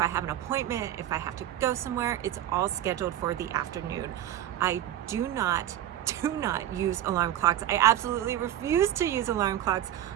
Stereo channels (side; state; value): left; quieter; 12.0 dB